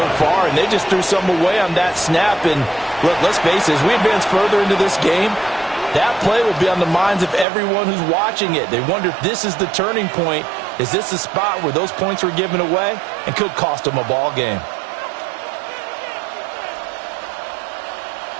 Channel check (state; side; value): drops out; left; at 7.5 s